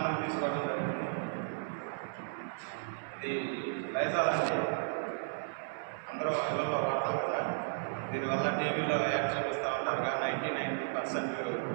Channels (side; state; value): left; silent; 55 dB below the other